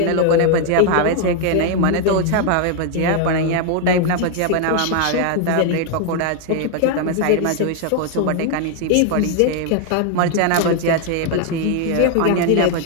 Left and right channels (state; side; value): different; both; correlation 0.00